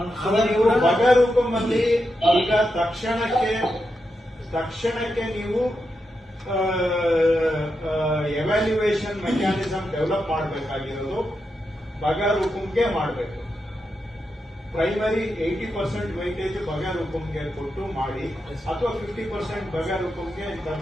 ನೀವು ಬಗಾರುಕುಂ ಅಲ್ಲಿ ಈಗ ತಕ್ಷಣಕ್ಕೆ ನೀವು ಎವ್ಯಾಲ್ಯೂಯೇಷನ್ ಮೆಕ್ಯಾನಿಸಮ್ ಡೆವಲಪ್ ಮಾಡಬೇಕಾಗಿರೋದು ಬಗಾರುಕುಂಗೆ ಮಾಡಬೇಕು. ಪ್ರೈಮರಿ 80% ವೈಟೇಜ್ ಬಗಾರುಕುಂಗೆ ಕೊಟ್ಟು ಮಾಡಿ, ಅಥವಾ 50% ಬಗಾರುಕುಂಗೆ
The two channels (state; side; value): normal; both; correlation 0.86